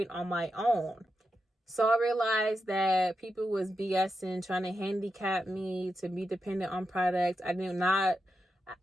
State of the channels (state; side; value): normal; both; correlation 0.87